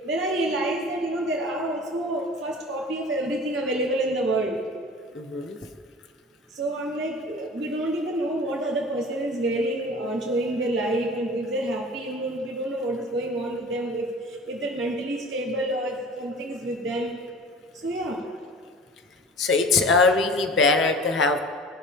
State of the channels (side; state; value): both; normal; correlation 0.41